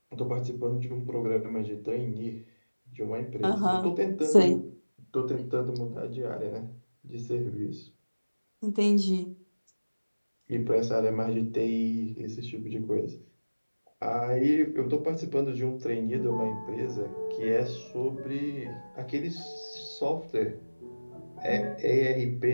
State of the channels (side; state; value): both; inverted; correlation -1.00